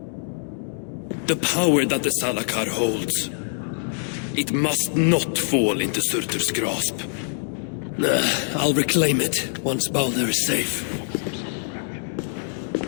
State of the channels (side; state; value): right; silent; digital silence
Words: The power that the Salakar holds, it must not fall into Surtur's grasp. I'll reclaim it once Balder is safe.